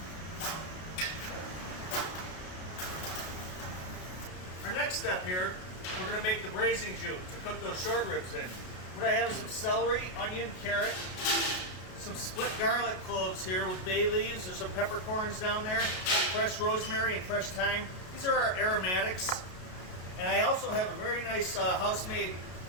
Our next step here, we're going to make the braising jus to cook those short ribs in. What I have is some celery, onion, carrot, some split garlic cloves here with bay leaves. There's some peppercorns down there, fresh rosemary and fresh thyme. These are our aromatics. And I also have a very nice house-made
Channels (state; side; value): late; right; 33 ms